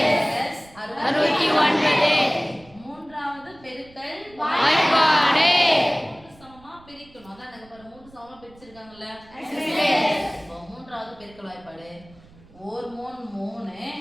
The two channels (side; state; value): right; noise; rumble, 25 dB below the sound